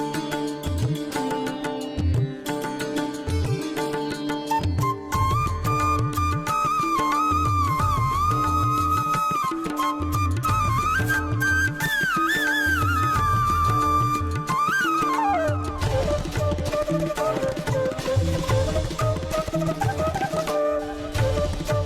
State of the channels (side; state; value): both; identical; correlation 1.00